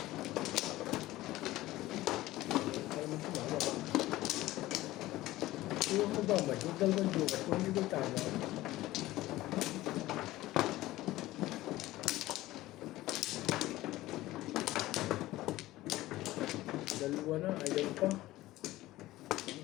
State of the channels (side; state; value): right; quieter; 17.0 dB